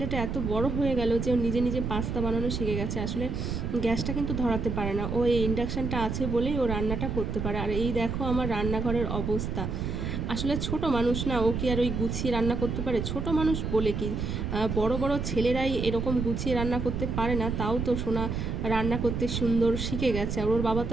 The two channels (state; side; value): noise; right; rumble, 3 dB below the sound